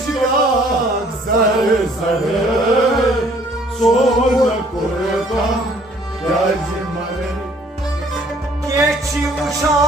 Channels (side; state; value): both; normal; correlation 0.59